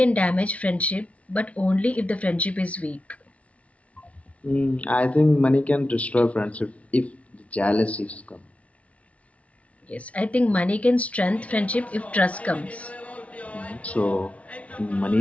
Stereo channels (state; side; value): late; right; 0.065 ms